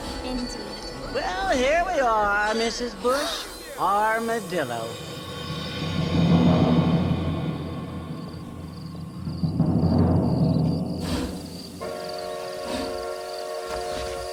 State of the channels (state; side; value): identical; both; correlation 1.00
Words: Indeed. Well, here we are, Mrs. Bush. Armadillo.